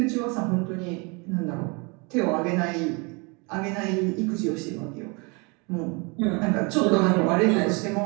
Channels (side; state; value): left; quieter; 30.3 dB